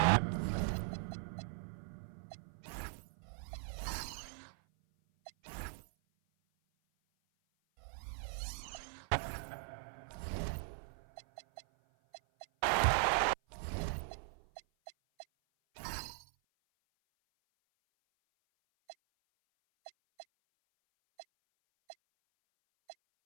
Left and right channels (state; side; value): silent; left; 51 dB below the other